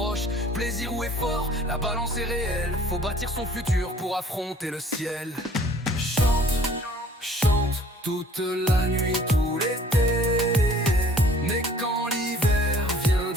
Plaisir ou effort, la balance est réelle. Faut bâtir son futur pour affronter le ciel. Chante, chante toute la nuit, tout l'été, mais quand l'hiver vient,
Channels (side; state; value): both; normal; correlation 0.54